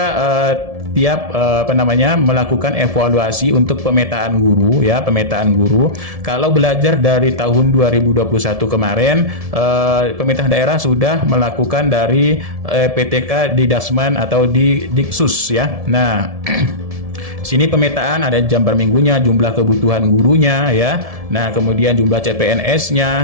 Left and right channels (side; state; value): left; late; 1.7 ms